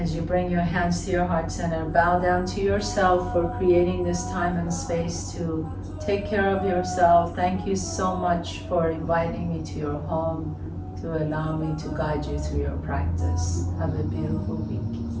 As you bring your hands to your heart center, bow down to yourself for creating this time and space to take care of yourself. Thank you so much for inviting me to your home, to allow me to guide you through your practice. Have a beautiful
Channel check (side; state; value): both; identical; correlation 1.00